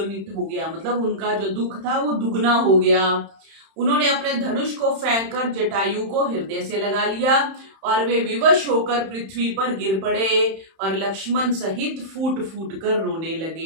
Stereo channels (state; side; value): late; left; 31 ms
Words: हो गया। मतलब उनका जो दुख था वो दुगना हो गया। उन्होंने अपने धनुष को फेंककर जटायु को हृदय से लगा लिया और वे विवश होकर पृथ्वी पर गिर पड़े और लक्ष्मण सहित फूट फूट कर रोने